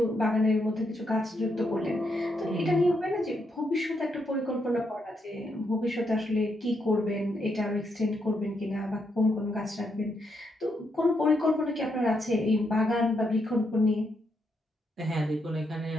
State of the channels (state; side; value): normal; both; correlation 0.79